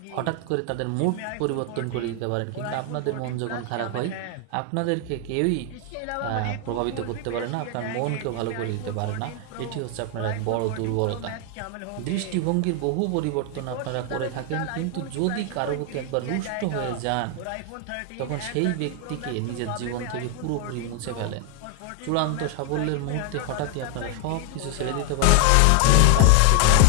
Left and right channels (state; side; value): different; both; correlation 0.00